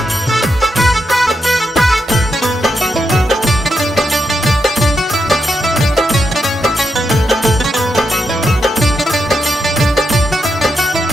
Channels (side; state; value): both; normal; correlation 0.84